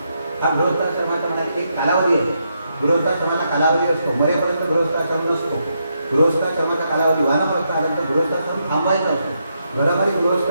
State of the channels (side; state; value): both; inverted; correlation -0.80